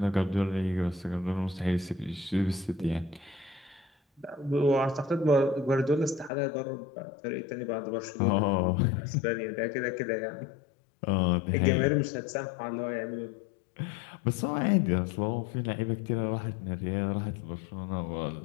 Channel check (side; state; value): right; drops out; at 6.3 s